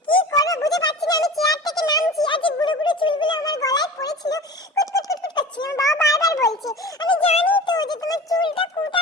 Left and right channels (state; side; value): normal; both; correlation 0.36